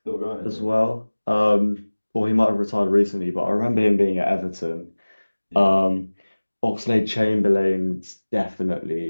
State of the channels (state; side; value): inverted; both; correlation -1.00